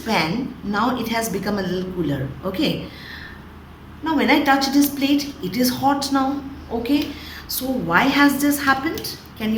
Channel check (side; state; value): both; identical; correlation 1.00